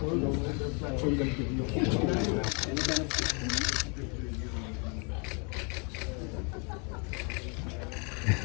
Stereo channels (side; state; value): right; quieter; 35.1 dB